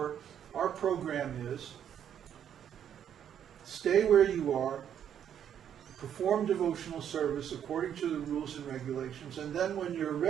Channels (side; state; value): left; quieter; 9.3 dB